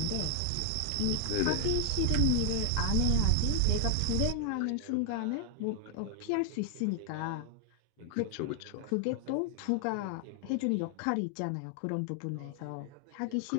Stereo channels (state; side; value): different; both; correlation 0.00